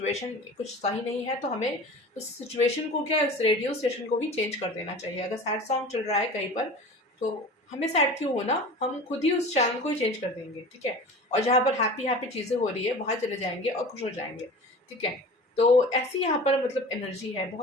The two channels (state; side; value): normal; both; correlation 0.37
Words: कुछ सही नहीं है, तो हमें उस सिचुएशन को क्या, उस रेडियो स्टेशन को भी चेंज कर देना चाहिए। अगर सैड सॉन्ग चल रहा है कहीं पर, तो हमें सैड क्यों होना, हम खुद ही उस चैनल को ही चेंज कर देंगे, ठीक है। और जहाँ पर हैप्पी हैप्पी चीज़ें हो रही है वहाँ चले जाएंगे और खुश हो जाएंगे, ठीक है। तो ऐसी यहाँ पर मतलब एनर्जी है,